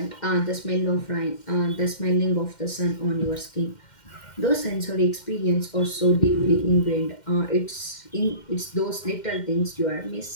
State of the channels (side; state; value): right; late; 2.1 ms